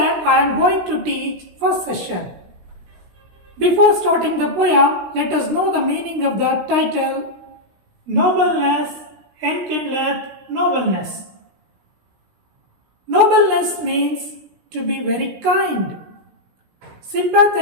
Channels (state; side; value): late; left; 16 ms